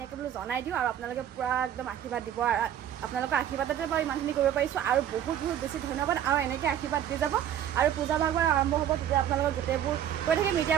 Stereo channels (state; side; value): quieter; left; 10.4 dB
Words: বোলো জনাই দিওঁ আৰু আপোনালোকে পূৰা একদম আশীৰ্বাদ দিব। আৰু আপোনালোকৰ আশীৰ্বাদতে বাৰু ইমানখিনি কৰিব পাৰিছোঁ আৰু বহুত বেছি ধন্যবাদ। আৰু এনেকৈ আশীৰ্বাদ দি যাব আৰু পূজা ভাগ বাৰ আৰম্ভ হ'ব তেতিয়া আপোনালোকৰ গোটেইবোৰ কৈ থাকিম। এতিয়া